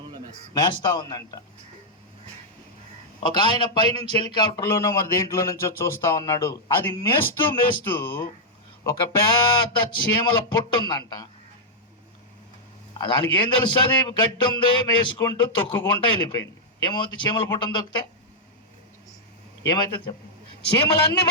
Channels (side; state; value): both; normal; correlation -0.05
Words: మేస్తా ఉందంట. ఒక ఆయన పైనుంచి హెలికాప్టర్లోనో మరి దేంట్లో నుంచో చూస్తా ఉన్నాడు. అది మేస్తూ మేస్తూ ఒక పెద్ద చీమల పుట్టు ఉందంట. దానికి ఏం తెలుస్తుంది? గడ్డి ఉంది, మేసుకుంటూ తొక్కుకుంటూ వెళ్ళిపోయింది. ఏమవుతుంది? చీమల పుట్టను తొక్కితే ఏమైతే చెప్ప, చీమలన్నీ